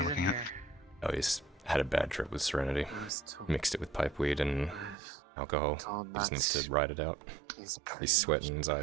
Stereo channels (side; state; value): left; drops out; at 5.0 s